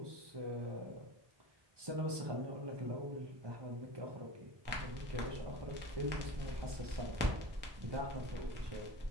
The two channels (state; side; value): late; left; 1.2 ms